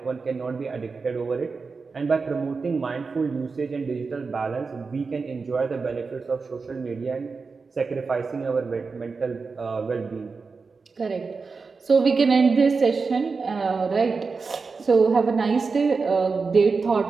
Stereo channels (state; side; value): quieter; left; 4.6 dB